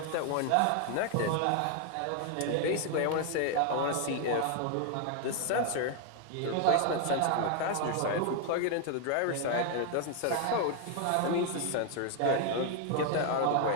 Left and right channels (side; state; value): both; different; correlation 0.00